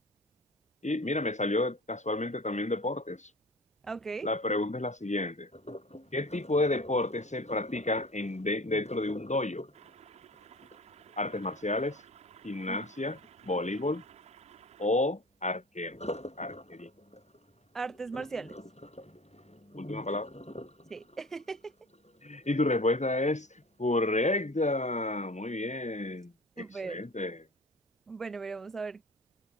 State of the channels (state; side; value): normal; both; correlation 0.40